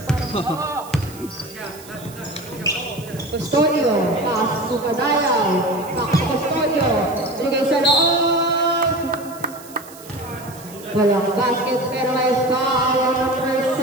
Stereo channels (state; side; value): noise; right; hiss, 19 dB below the sound